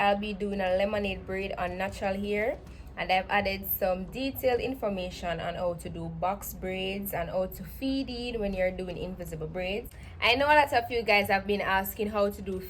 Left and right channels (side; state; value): both; identical; correlation 1.00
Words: be doing a lemonade braid on natural hair, and I've added some detailed information on how to do box braids and how to feed it when you're doing invisible braids. I know a lot of you guys have been asking how to do